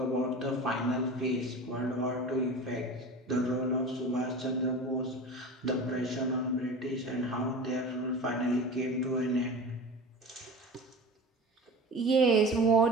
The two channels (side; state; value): both; normal; correlation 0.33